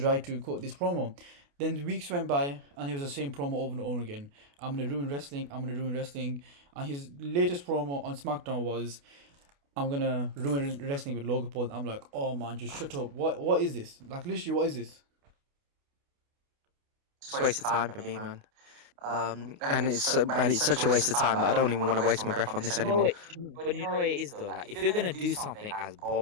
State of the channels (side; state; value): left; late; 28 ms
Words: right to cut this promo. Then the weeks went by, and he was the same promo over and over again. I'm gonna ruin wrestling. I'm gonna ruin wrestling. And his latest promo on SmackDown was, "I'm gonna ruin wrestling with Logan Paul." I'm like, "Oh man, just shut up. What is this? Like literally, what is this?" It's a waste of time for me, man. And it's such a waste of time that I don't even want to waste my breath on this anymore. But you know what it is though. Like, if you're gonna do something as